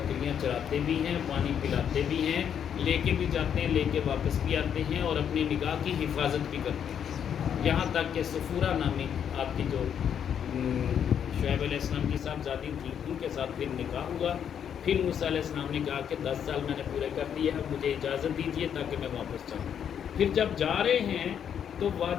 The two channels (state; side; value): quieter; right; 8.5 dB